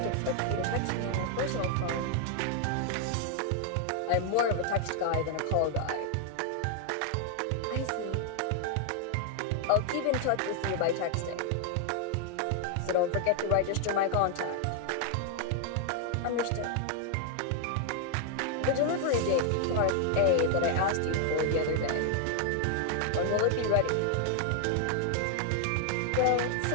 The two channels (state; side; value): different; both; correlation 0.00